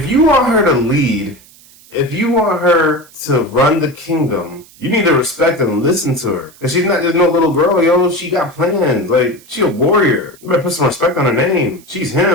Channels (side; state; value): right; noise; hiss, 25 dB below the sound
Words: you want her to lead, if you want her to run the kingdom, you need to respect and listen to her. Cause she's not just no little girl, yo. She got plans. Like, she a warrior. You better put some respect on her name. She's